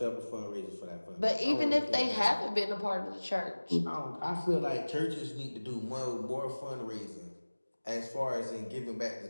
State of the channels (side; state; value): both; inverted; correlation -1.00